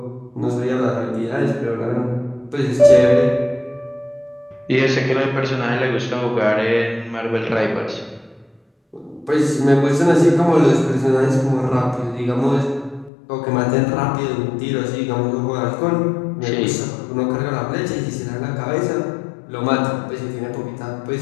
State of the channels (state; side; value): drops out; right; at 13.1 s